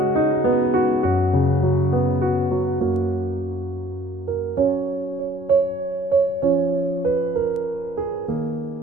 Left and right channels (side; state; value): both; normal; correlation 0.56